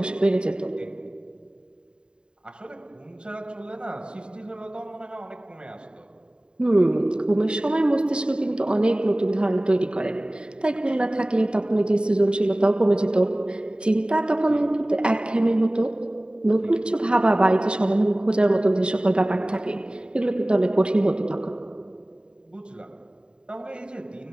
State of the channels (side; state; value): left; late; 0.050 ms